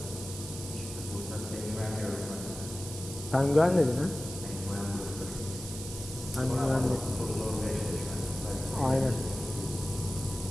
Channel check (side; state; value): right; noise; hiss, 11 dB below the sound